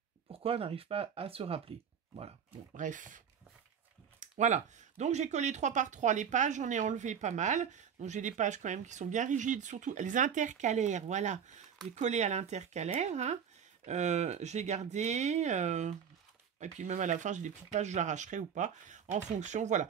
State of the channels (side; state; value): left; quieter; 7.7 dB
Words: pourquoi on n'arrive pas à se rappeler. Voilà, bon, bref... Voilà, donc j'ai collé 3 par 3 les pages, j'en ai enlevé pas mal. Donc j'ai des pages quand même qui sont bien rigides, surtout les intercalaires, voilà. J'ai collé à l'intercalaire, hein. J'ai gardé, et puis même à la fin j'ai des petites pages, je l'arracherai ou pas, en fonction, voilà.